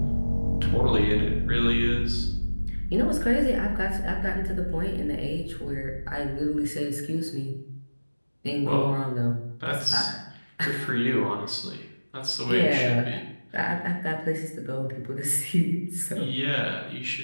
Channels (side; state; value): both; inverted; correlation -1.00